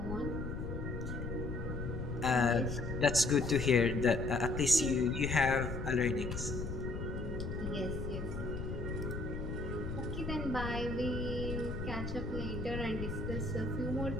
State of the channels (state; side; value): noise; left; rumble, 5 dB below the sound